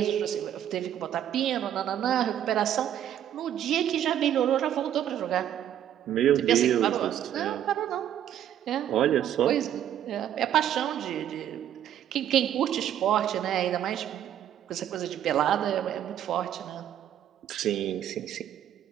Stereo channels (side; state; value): left; quieter; 10.7 dB